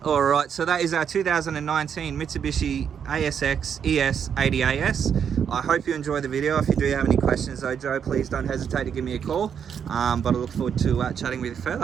All right, so that is our 2019 Mitsubishi ASX ES 80AS. I hope you enjoyed the video. If you do have any questions though, Joe, please don't hesitate to give me a call. But I look forward to chatting with you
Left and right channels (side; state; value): left; quieter; 7.8 dB